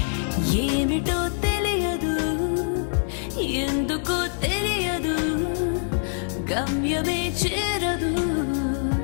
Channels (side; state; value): right; silent; 62 dB below the other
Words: ఏమిటో తెలియదు, ఎందుకో తెలియదు, గమ్యమే చేరదు,